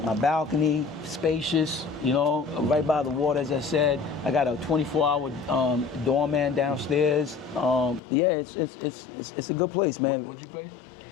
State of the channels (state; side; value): drops out; right; at 8.0 s